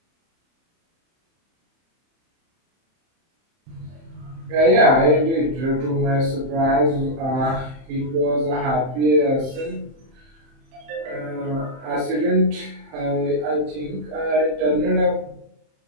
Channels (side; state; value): left; late; 30 ms